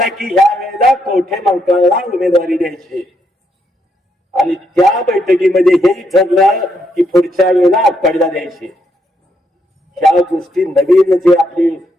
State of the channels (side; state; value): both; normal; correlation 0.77